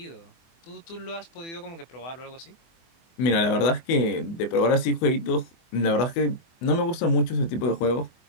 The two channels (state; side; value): late; right; 24 ms